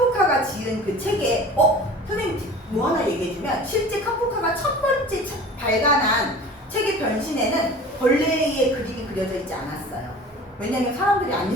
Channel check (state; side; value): normal; both; correlation 0.41